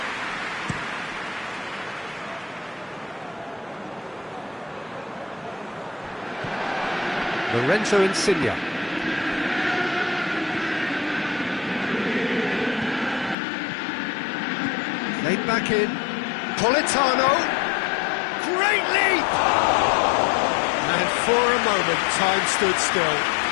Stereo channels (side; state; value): right; drops out; at 13.4 s